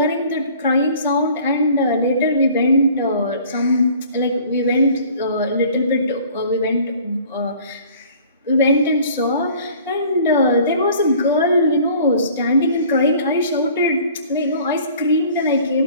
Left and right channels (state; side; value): inverted; both; correlation -0.51